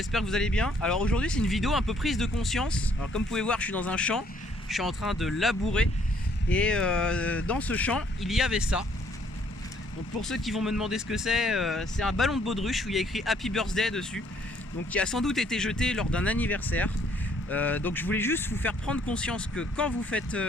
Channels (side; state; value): both; normal; correlation 0.65